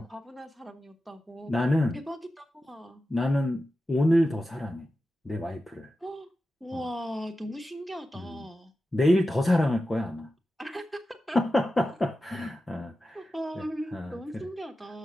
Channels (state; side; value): normal; both; correlation 0.92